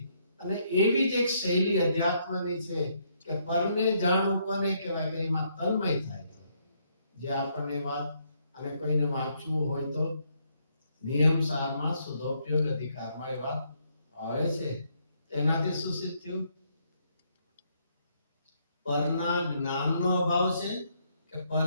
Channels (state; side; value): inverted; both; correlation -0.73